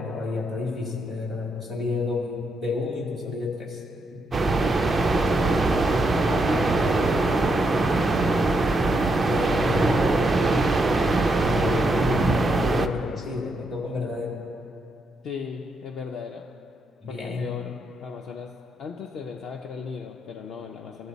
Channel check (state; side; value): normal; both; correlation 0.80